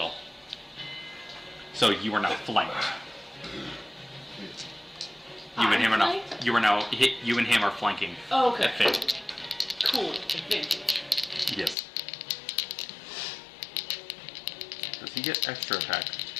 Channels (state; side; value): drops out; right; at 11.8 s